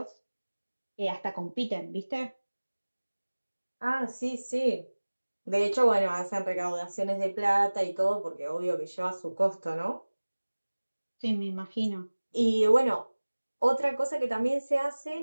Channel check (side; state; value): both; inverted; correlation -1.00